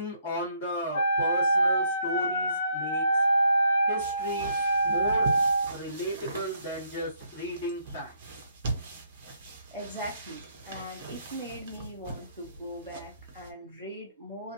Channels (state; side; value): inverted; both; correlation -0.71